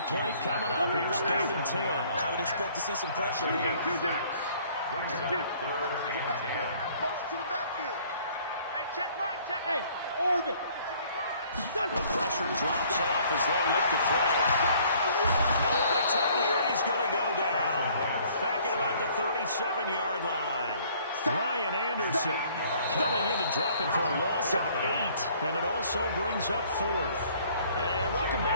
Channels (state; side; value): inverted; both; correlation -0.58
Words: play coming up. Here's 3rd and 10. I would expect to see some pressure here. Brings up 3rd and 10. Motion to the backfield. Hey, check mine, check. Hey, orbit. The pressure drops off as they look to throw. Nowhere to turn here, and he's going to go down. Back at about the 37-yard line. Ryan Anderson coming in to drop it for a loss of 8, and it also brings up 4th. And welcome